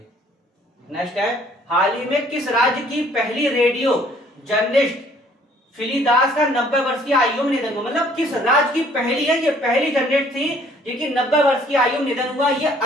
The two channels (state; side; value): normal; both; correlation 0.59